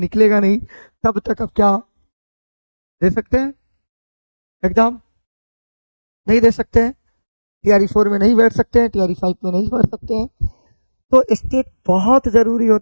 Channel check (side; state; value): both; inverted; correlation -1.00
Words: नहीं तब तक आप क्या दे सकते हैं एग्ज़ाम? नहीं दे सकते हैं। टीआरई 4 में नहीं बैठ सकते हैं, टीआरई 5 में नहीं बैठ सकते हैं। तो स्टेट बहुत ज़रूरी